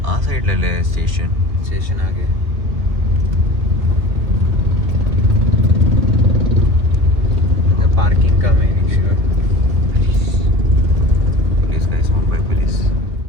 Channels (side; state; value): left; late; 2.6 ms